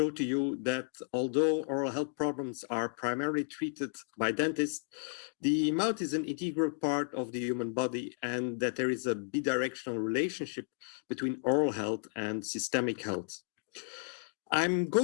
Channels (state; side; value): silent; right; digital silence